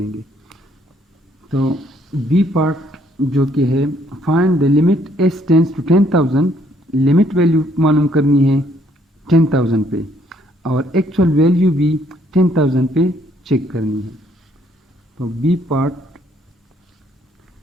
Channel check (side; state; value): both; normal; correlation 0.67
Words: तो बी पार्ट जो कि है find the limit S tends to 10,000, limit value मालूम करनी है 10,000 पे और एक्चुअल वैल्यू भी 10,000 पे चेक करनी है। तो B part